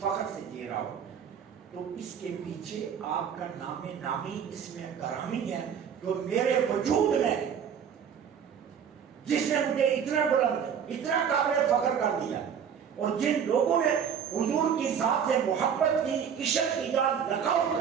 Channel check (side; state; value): left; quieter; 7.7 dB